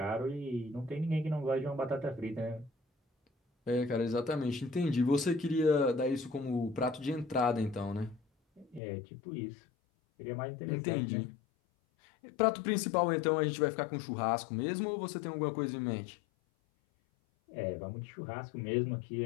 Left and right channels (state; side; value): drops out; right; at 8.8 s